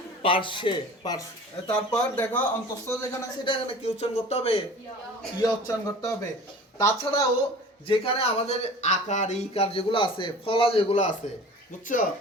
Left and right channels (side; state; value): both; normal; correlation 0.41